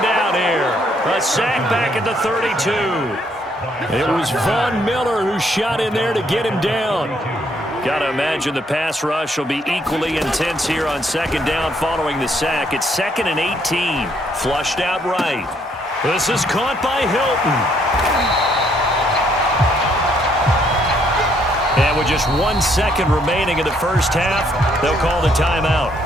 down here. A sack back at the 32. It was Von Miller who shot in there to get him down. Got to imagine the pass rush will be equally intense here on 2nd down following the sack. It's 2nd and 18. Flushed out right. This is caught by Hilton. And with just 1 second remaining in the first half, they'll call the timeout.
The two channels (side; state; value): both; normal; correlation 0.69